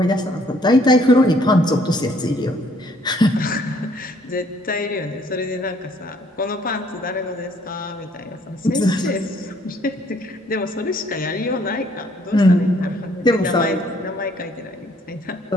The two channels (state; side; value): normal; both; correlation 0.63